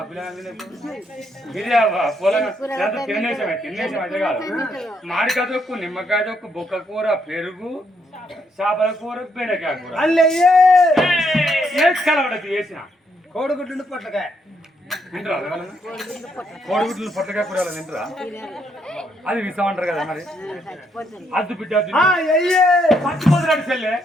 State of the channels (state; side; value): normal; both; correlation 0.74